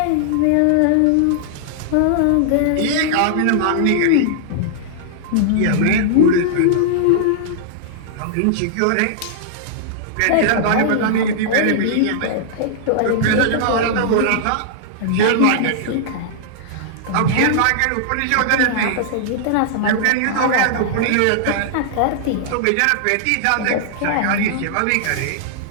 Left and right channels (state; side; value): different; both; correlation -0.01